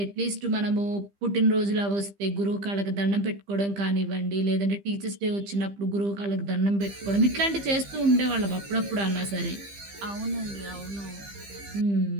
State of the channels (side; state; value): left; late; 15 ms